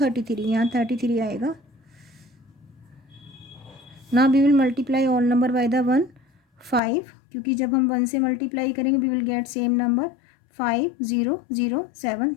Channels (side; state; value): right; drops out; at 6.8 s